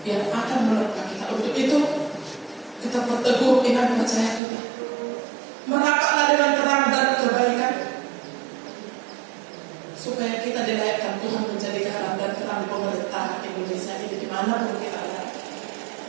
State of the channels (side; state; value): left; drops out; at 4.4 s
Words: yang akan menerpa kita. Untuk itu kita berteguh iman percaya kita. Merapatlah dengan terang dan kebaikan, supaya kita dilayakkan Tuhan menjadi garam dan terang di pemerintahan Indonesia ini dimanapun kita ada.